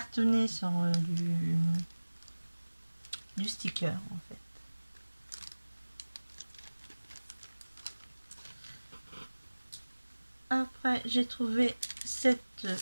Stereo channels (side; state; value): both; inverted; correlation -1.00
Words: sur du sticker en fait. Après j'ai trouvé cette